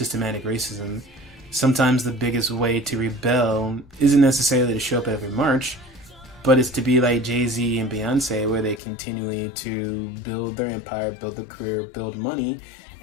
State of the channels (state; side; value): drops out; right; at 8.8 s